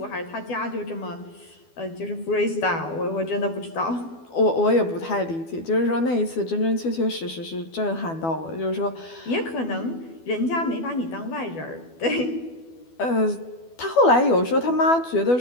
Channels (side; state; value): right; late; 12 ms